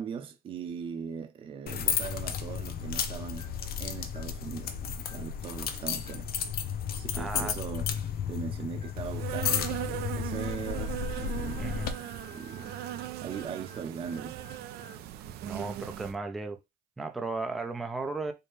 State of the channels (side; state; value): both; normal; correlation 0.36